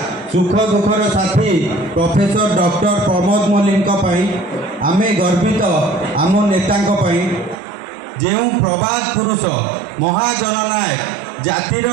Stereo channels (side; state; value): left; drops out; at 7.6 s